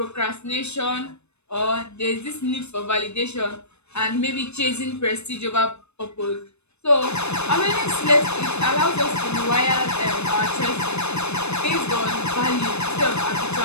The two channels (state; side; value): late; right; 0.81 ms